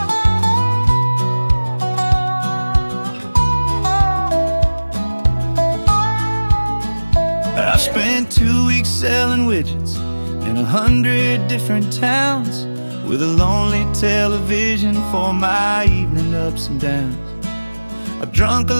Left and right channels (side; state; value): both; inverted; correlation -1.00